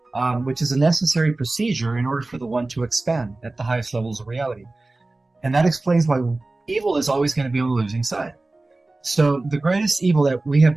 which is a necessary procedure in order for the one to expand at the highest levels of reality. And that explains why evil is always going to be on the losing side. So the greatest evil that we have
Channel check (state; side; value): quieter; left; 3.1 dB